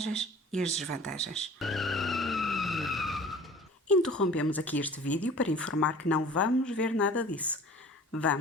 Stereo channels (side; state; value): both; normal; correlation 0.45